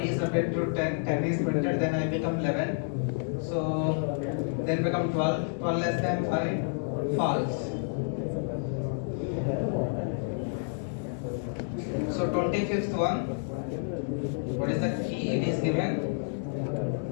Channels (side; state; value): right; silent; digital silence